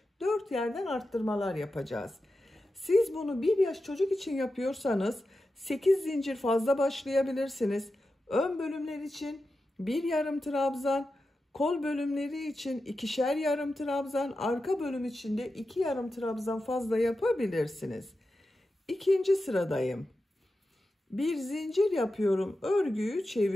4 yerden arttırmalar yapacağız. Siz bunu 1 yaş çocuk için yapıyorsanız 8 zincir fazla başlayabilirsiniz. Ön bölümler için 1 yarım trabzan, kol bölümleri için 2'şer yarım trabzan, arka bölüm için de 2 yarım trabzan fazla yapabilirsiniz. İkinci sıradayım. Bir zincir yapıyorum, örgüyü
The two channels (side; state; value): both; normal; correlation 0.91